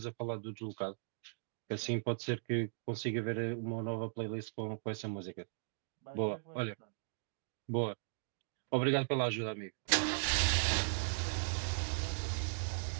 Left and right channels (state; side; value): silent; left; digital silence